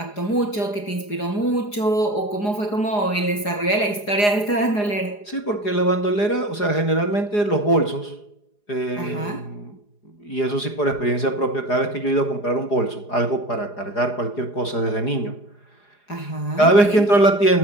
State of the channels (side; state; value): right; late; 4.9 ms